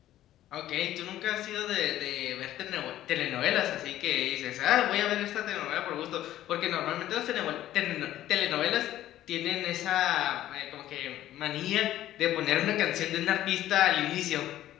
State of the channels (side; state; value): right; quieter; 13.3 dB